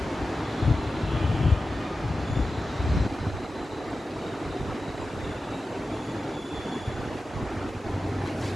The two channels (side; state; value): both; normal; correlation 0.93